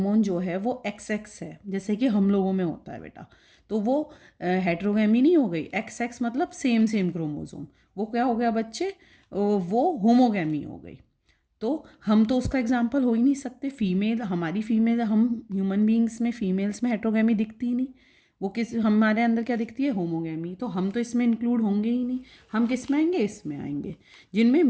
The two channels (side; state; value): both; identical; correlation 1.00